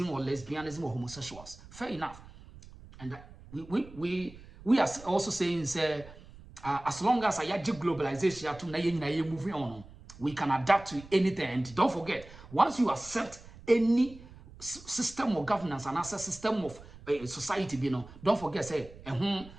or lesbianism or homosexuals. Fair enough, and we are also saying say as long as I globalization to moving on, we can adapt to anything. And don't forget, once you accept any system of governance and as a system of society, don't forget, say,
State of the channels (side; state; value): right; noise; rumble, 19 dB below the sound